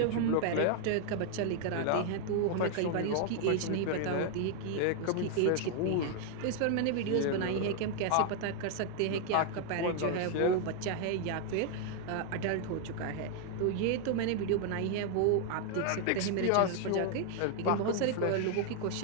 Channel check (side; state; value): both; different; correlation 0.00